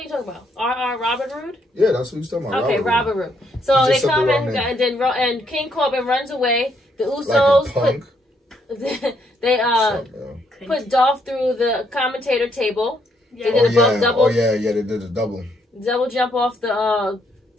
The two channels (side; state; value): both; normal; correlation 0.73